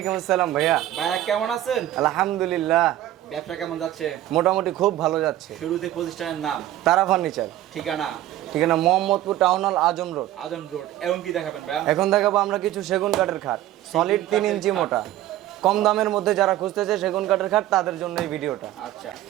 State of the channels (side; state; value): left; quieter; 13.8 dB